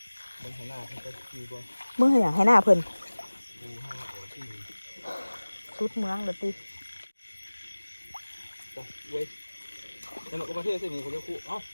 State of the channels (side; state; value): both; inverted; correlation -1.00